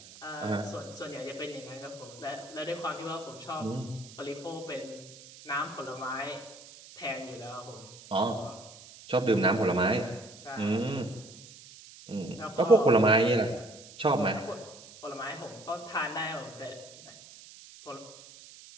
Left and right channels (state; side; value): noise; right; hiss, 19 dB below the sound